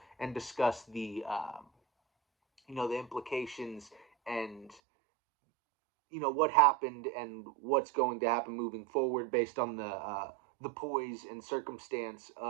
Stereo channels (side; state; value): left; drops out; at 4.8 s